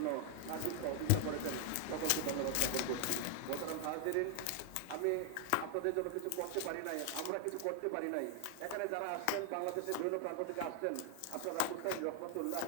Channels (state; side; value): different; both; correlation 0.00